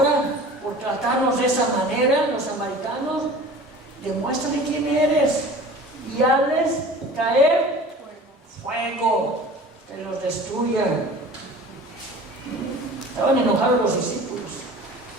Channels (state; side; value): normal; both; correlation 0.42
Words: por tratarnos de esa manera, los samaritanos, demuéstrale quién eres y hazles caer fuego, que los destruya. Estaban enojados los discípulos,